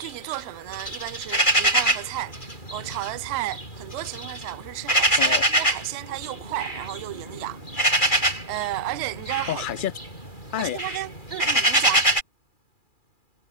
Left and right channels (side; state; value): right; late; 2.4 ms